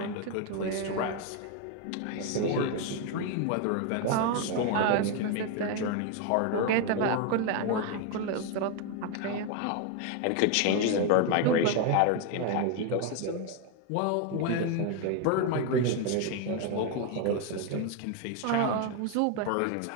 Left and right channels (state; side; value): different; both; correlation 0.01